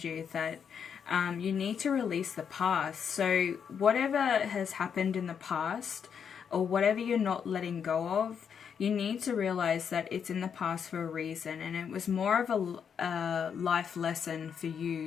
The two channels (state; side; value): quieter; right; 7.3 dB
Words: you that you need to release the past. So whatever has happened in the past, or whatever you're not letting go of, you need to realize that it's in the past for a reason, and it was more of a life lesson for